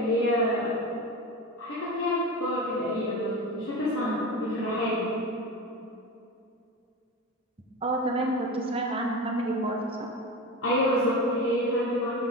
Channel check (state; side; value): normal; both; correlation 0.26